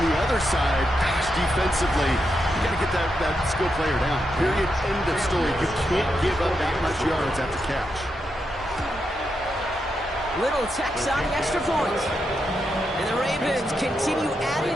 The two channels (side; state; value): both; normal; correlation 0.84